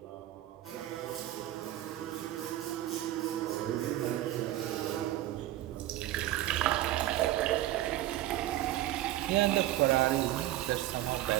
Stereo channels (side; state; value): left; quieter; 14.6 dB